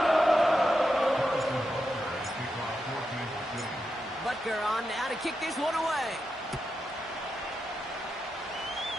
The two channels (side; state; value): both; normal; correlation 0.87